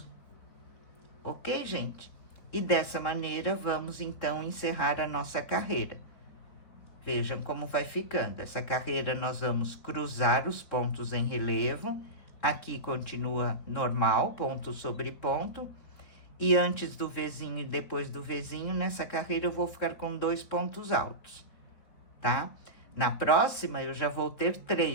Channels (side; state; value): right; late; 4.1 ms